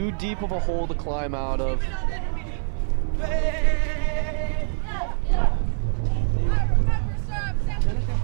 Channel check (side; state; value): left; silent; 57 dB below the other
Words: deep of a hole to climb out of? Seneca